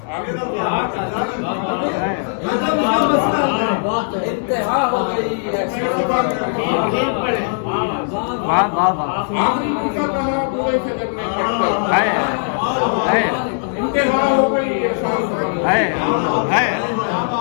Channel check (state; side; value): silent; right; digital silence